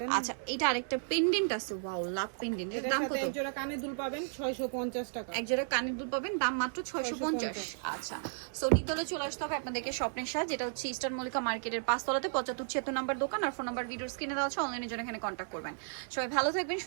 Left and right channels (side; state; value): left; silent; digital silence